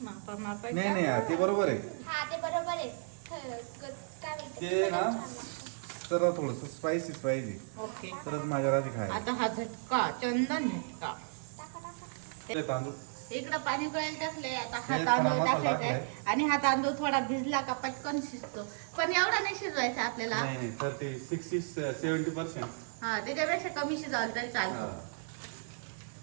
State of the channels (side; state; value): left; silent; 55 dB below the other